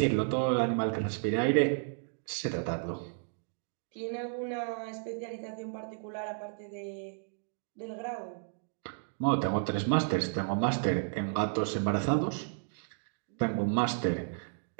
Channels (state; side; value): silent; left; digital silence